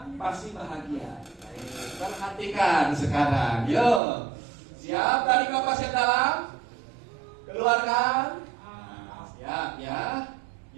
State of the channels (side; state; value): left; drops out; at 4.0 s